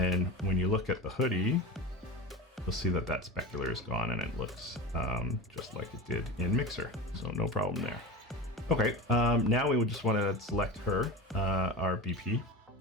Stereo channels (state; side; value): normal; both; correlation 0.28